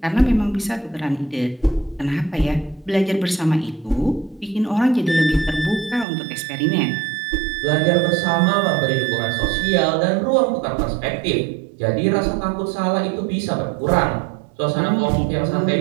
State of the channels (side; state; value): left; drops out; at 6.1 s